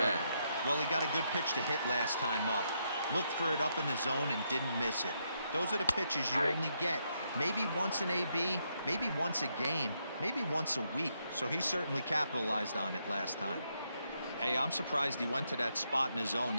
Well, he got a good pitch to hit last time up. Looked for it up in the zone and didn't miss it. Those are the pitches you only get. Maybe once an AB, maybe once a game, maybe once a week. So he certainly capitalized on it last time. Hey, I'm surprised he went to that spot in his zone.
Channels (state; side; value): inverted; both; correlation -0.79